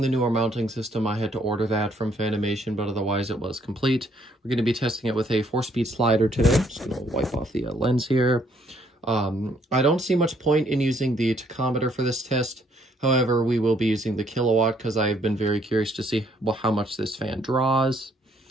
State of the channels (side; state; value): both; normal; correlation 0.67